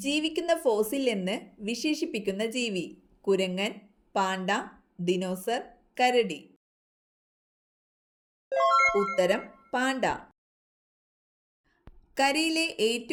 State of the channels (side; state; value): both; identical; correlation 1.00